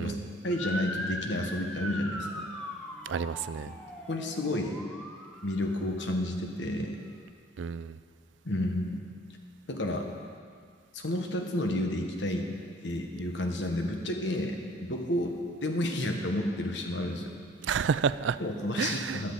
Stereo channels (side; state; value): both; normal; correlation 0.53